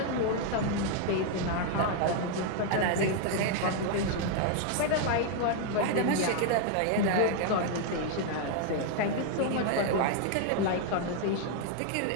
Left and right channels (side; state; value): both; different; correlation 0.00